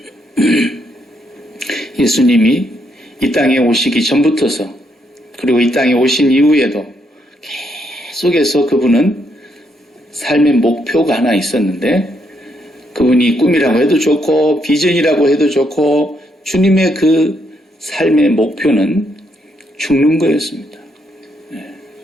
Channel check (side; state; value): both; normal; correlation 0.76